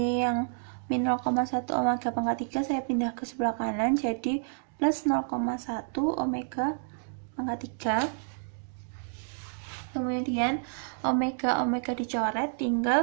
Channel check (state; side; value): silent; left; digital silence